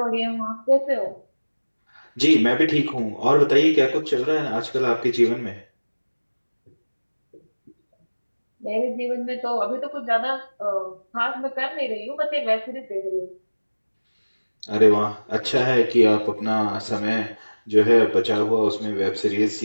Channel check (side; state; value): both; inverted; correlation -1.00